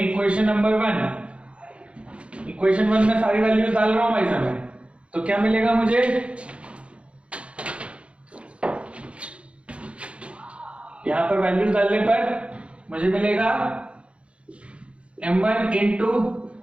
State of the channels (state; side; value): late; left; 0.060 ms